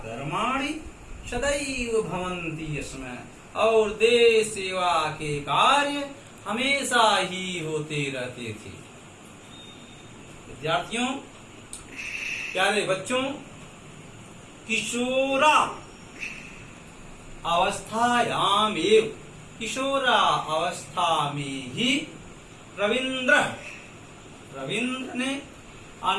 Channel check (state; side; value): identical; both; correlation 1.00